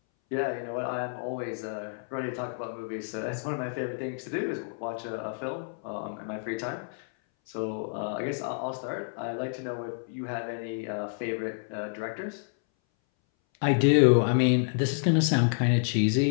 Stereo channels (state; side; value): silent; right; 59 dB below the other